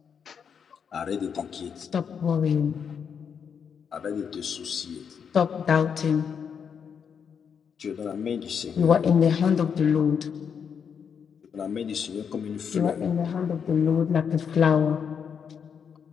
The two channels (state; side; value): quieter; right; 7.0 dB